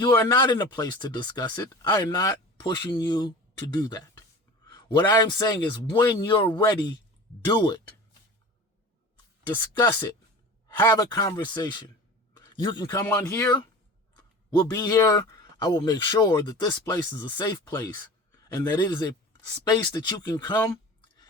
are not in a place to discuss it, I am not pushing you to do that. What I am saying is when you're ready, do it. Discuss it. Have a conversation. You can come on here. We'll be here. I will make sure that this place is a safe place and that it is a space that you can come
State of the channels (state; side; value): normal; both; correlation 0.37